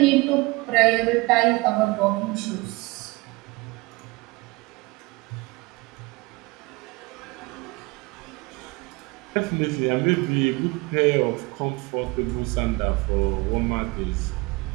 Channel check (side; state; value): left; quieter; 24.3 dB